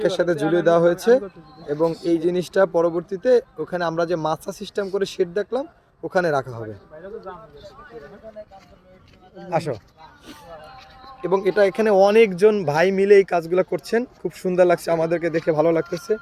সাথে ঝুলিয়ে দেওয়া হয়েছে এবং এই জিনিসটা পরবর্তীতে ওখানে আমরা যে মাছা সিস্টেম করে শেড দেখলাম ওখানে রাখা হবে। আসো। এবং এটা এখানে অনেকজন ভাই মিলে এই কাজগুলো করছেন, খুব সুন্দর লাগছে, আমাদেরকে দেখে ভালো লাগতেছে।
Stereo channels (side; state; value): both; identical; correlation 1.00